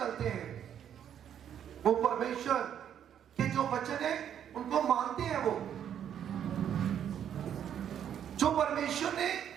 हैं। वो परमेश्वर के जो वचन है उनको मानते हैं। वो जो परमेश्वर ने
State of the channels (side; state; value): left; quieter; 9.4 dB